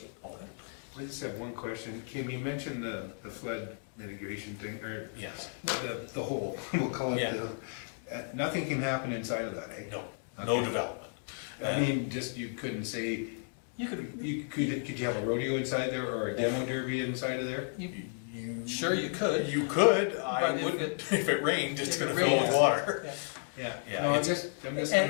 own it. I just have one question. Kim, you mentioned the flood mitigation thing, or Yes. the hole, we'll call it Yeah. nothing can happen inside of that, eh? No, no Okay. development. I mean, just, you couldn't say, You could, could you have a rodeo inside there, or a demo derby inside of there? sure you could. You could, I But if wouldn't, it- if it rained, it's if it gonna fill with rains, water. Yeah. Yeah. Yeah, No, I'm it's- just.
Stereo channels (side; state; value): right; silent; 56 dB below the other